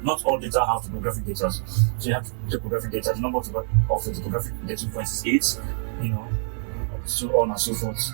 Not all data have topographic data. So you have the topographic data. The number of the topographic data points is 8. You know, so on and so forth.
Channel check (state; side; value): silent; left; digital silence